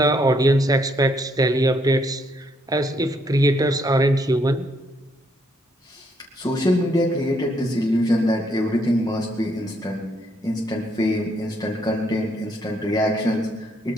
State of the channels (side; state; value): both; normal; correlation 0.72